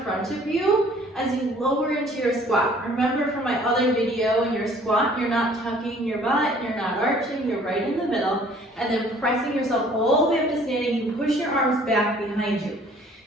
front of you as you lower into your squat. Remember from my other video, in your squat, you're not tucking your butt, you're not arching, you're right in the middle, and then pressing yourself all the way up to standing. You push your arms back behind you.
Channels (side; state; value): both; normal; correlation 0.55